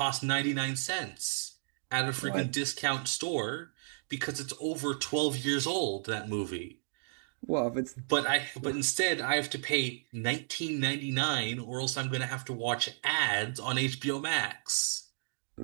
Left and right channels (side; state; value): left; silent; digital silence